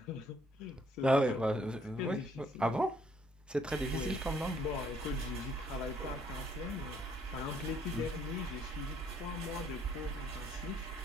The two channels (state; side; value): normal; both; correlation 0.66